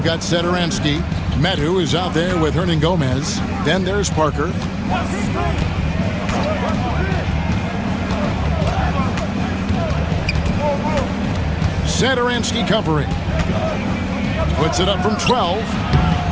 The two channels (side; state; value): both; identical; correlation 1.00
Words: got Satoransky. Medu is out there with Hernan Gomez. Then there's Parker. Satoransky covering. Puts it up from 12.